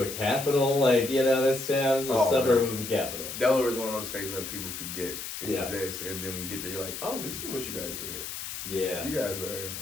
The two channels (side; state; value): left; noise; hiss, 7 dB below the sound